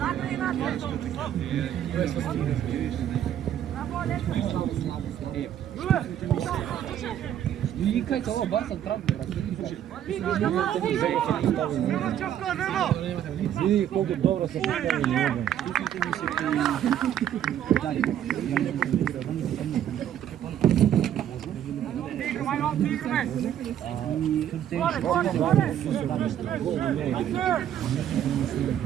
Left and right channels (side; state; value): left; quieter; 10.5 dB